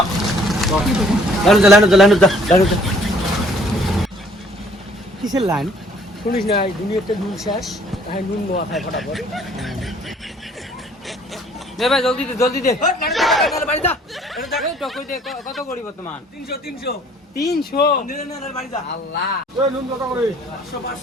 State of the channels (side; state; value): both; normal; correlation 0.58